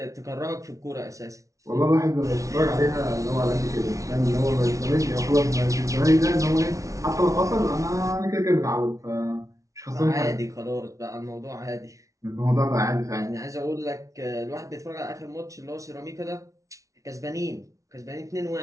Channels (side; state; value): left; late; 0.16 ms